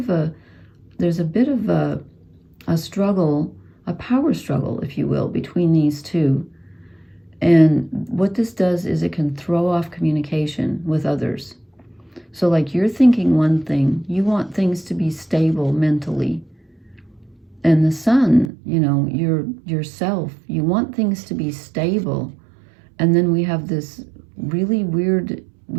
a struggle, a power struggle, if you will, between these two. And what this does is it can throw off communication with others. So like, you're thinking one thing, you want things to be stable mentally. And the sun, you know, yourself, you want things to be stable. And then we have this really weird,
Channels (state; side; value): drops out; left; at 18.5 s